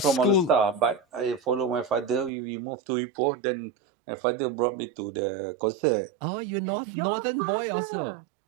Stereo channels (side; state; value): left; drops out; at 2.3 s